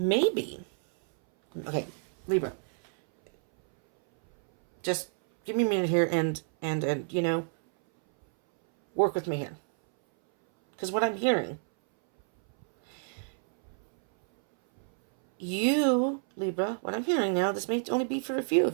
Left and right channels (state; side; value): silent; left; 59 dB below the other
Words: Okay, Libra. Just give me a minute here and you know, work with me here. Because what I'm hearing, you, Libra, what I'm hearing now, this may only be for a few